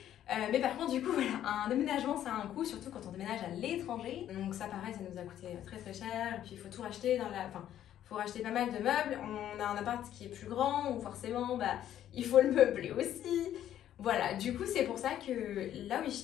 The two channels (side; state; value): right; quieter; 11.3 dB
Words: Mais par contre du coup voilà, un déménagement ça a un coût, surtout quand on déménage à l'étranger. Donc ça pareil, ça nous a coûté très très cher. Et puis il faut tout racheter il faut racheter pas mal de meubles. On a un appart qui est plus grand, donc forcément il faut le meubler aussi. Voilà, du coup c'est pour ça que la